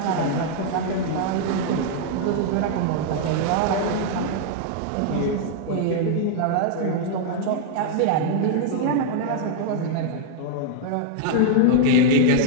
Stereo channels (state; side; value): different; both; correlation -0.01